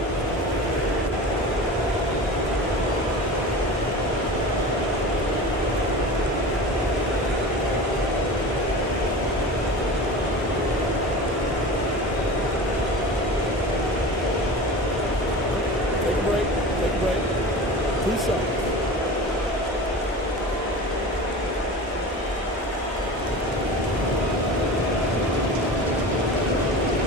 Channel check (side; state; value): both; normal; correlation 0.33